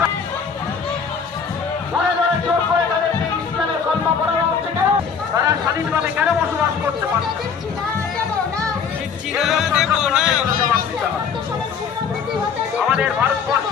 ধরে ধরে জোর করে তাদেরকে ইসলামের কলমা পড়ানো হচ্ছে কেন? তারা স্বাধীনভাবে কেন বসবাস করতে পারে? আমাদের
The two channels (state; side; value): quieter; right; 6.3 dB